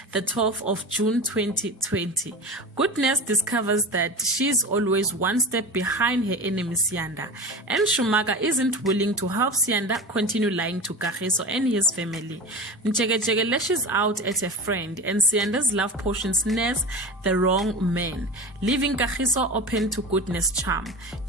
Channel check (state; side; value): normal; both; correlation 0.27